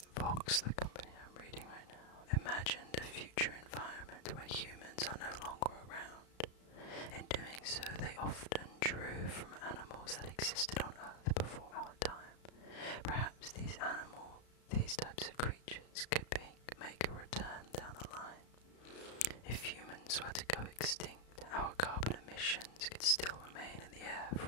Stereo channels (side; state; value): right; late; 34 ms